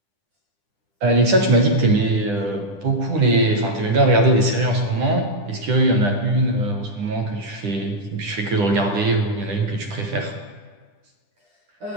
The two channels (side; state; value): left; late; 10 ms